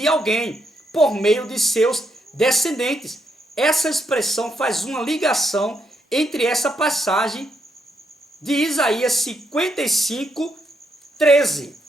alguém por meio de seus descendentes. Essa expressão faz uma ligação entre essa passagem de Isaías 55, 13.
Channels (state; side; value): normal; both; correlation 0.78